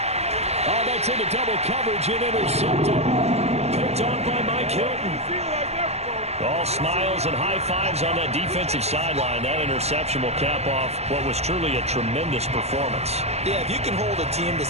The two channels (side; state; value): left; late; 0.31 ms